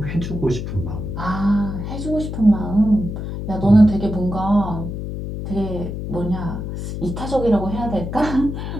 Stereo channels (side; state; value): left; noise; hum, 6 dB below the sound